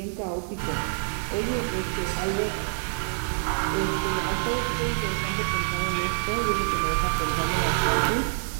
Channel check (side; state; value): left; silent; digital silence